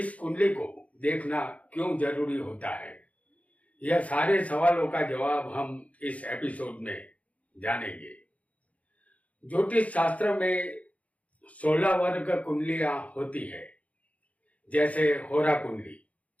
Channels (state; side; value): late; right; 0.067 ms